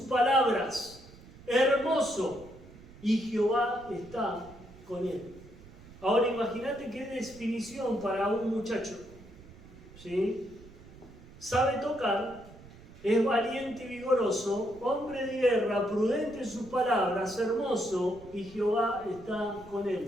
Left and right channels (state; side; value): noise; right; rumble, 20 dB below the sound